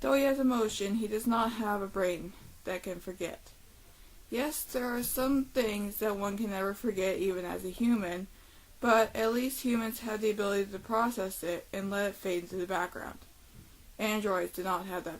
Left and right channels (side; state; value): both; identical; correlation 1.00